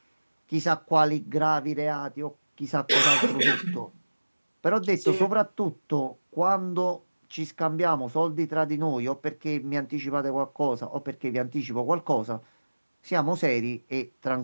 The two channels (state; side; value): inverted; both; correlation -1.00